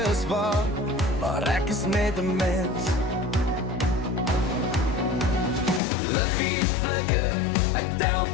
is waar, maar ek is net 'n mens. Liggies flikker, ek tel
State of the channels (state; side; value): drops out; right; at 5.8 s